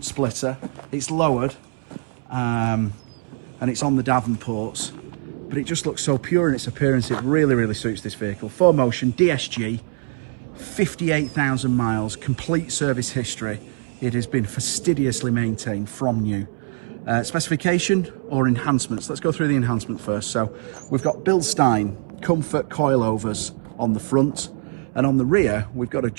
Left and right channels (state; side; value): silent; left; 64 dB below the other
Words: splitter, it's lowered, and it's on the Davenports, but it just looks so pure in its appearance. It really suits this vehicle. BlueMotion DSG, 58,000 miles, complete service history. It has been fastidiously maintained from new. Specification or enhancements. Let's go through the enhancement first. So we've got bilstein comfort coilovers on the front, and on the rear we've got